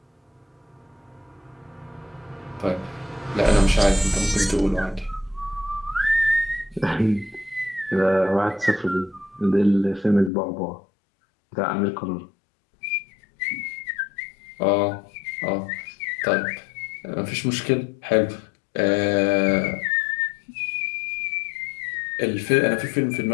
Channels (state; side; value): drops out; right; at 10.3 s